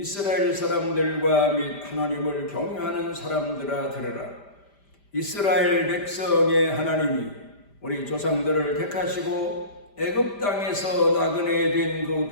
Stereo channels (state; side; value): late; right; 5.0 ms